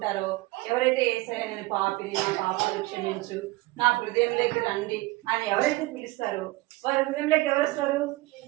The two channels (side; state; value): left; quieter; 20.3 dB